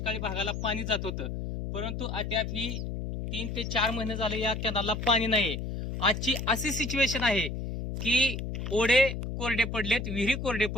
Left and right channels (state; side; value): noise; left; hum, 5 dB below the sound